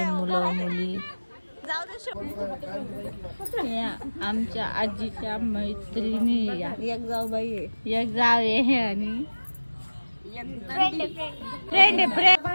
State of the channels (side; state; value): both; inverted; correlation -1.00